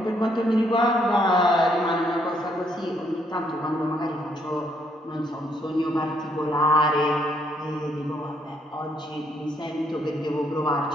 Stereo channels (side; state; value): both; normal; correlation 0.70